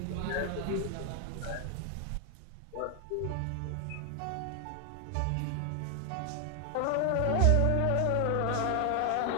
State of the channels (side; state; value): both; different; correlation 0.00